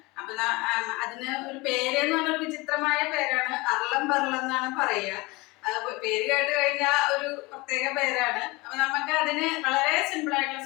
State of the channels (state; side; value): quieter; right; 23.6 dB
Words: അപ്പൊ അതിന് ഒരു പേരെന്ന് പറഞ്ഞൊരു വിചിത്രമായ പേരാണ്, അർളം ബർളം എന്നാണ് പറയുക. പേര് കേട്ട് കഴിഞ്ഞാൽ ഒരു പ്രത്യേക പേരാണ്. അപ്പൊ നമുക്ക് അതിന് വളരെ സിമ്പിൾ ആയിട്ടുള്ള